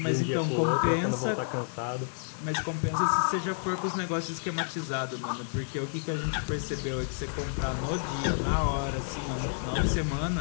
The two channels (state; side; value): silent; right; digital silence